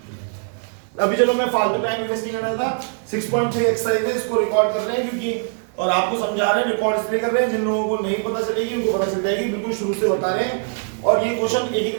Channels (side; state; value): left; silent; 64 dB below the other